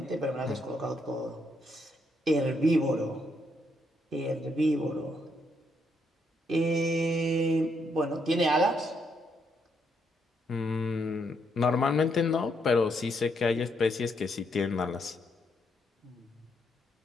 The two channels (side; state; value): both; normal; correlation 0.76